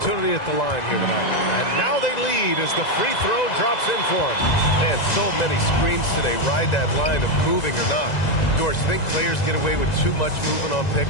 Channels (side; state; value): right; late; 1.9 ms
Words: at the line here tonight. And now they lead as the free throw drops in for him. And so many screens today ride that line of moving or not. Doris, you think players get away with too much movement on